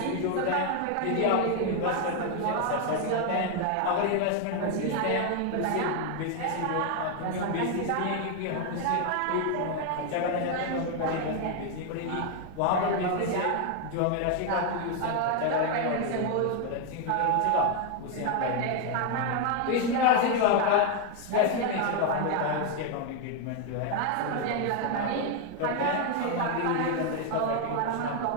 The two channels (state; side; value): different; both; correlation 0.01